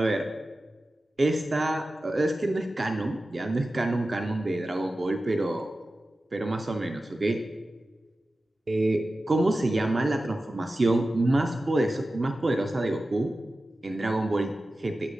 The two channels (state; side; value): normal; both; correlation 0.94